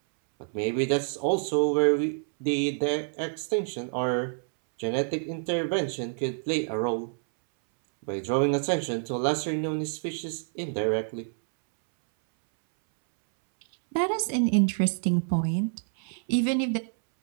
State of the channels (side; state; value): left; silent; 60 dB below the other